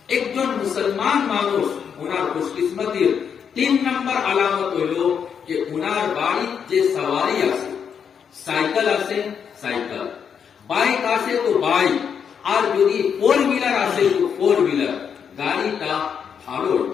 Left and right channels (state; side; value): quieter; right; 7.3 dB